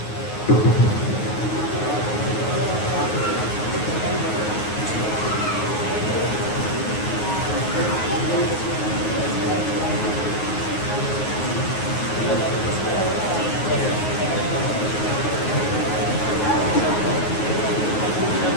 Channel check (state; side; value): late; right; 9.5 ms